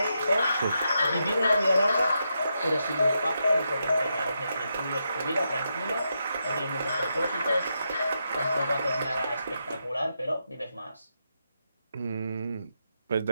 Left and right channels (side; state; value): both; inverted; correlation -0.84